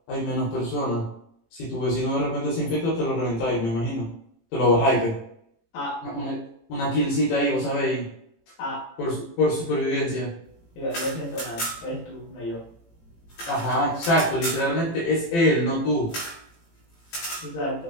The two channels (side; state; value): right; late; 18 ms